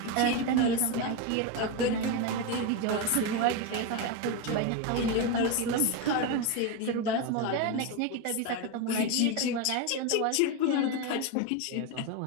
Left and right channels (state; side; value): different; both; correlation 0.03